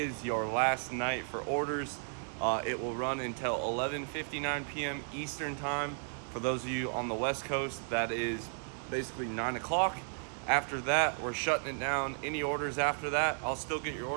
your last night for orders. It will run until 11:59 p.m. Eastern time. For those of you on the West Coast, that is basically 9 o'clock. After that, we're shutting it down. Any orders after that, I'll still get your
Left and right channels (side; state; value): left; silent; 55 dB below the other